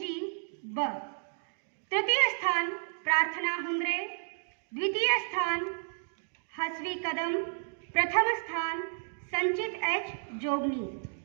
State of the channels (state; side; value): silent; left; digital silence